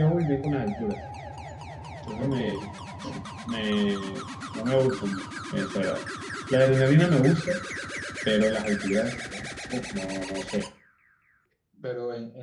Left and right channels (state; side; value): identical; both; correlation 1.00